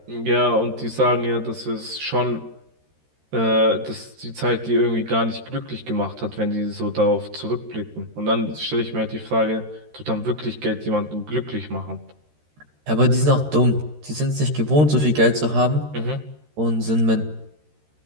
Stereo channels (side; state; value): left; late; 13 ms